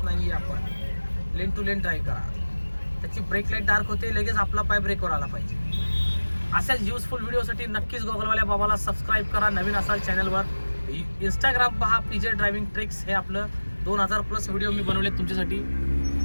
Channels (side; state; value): both; inverted; correlation -1.00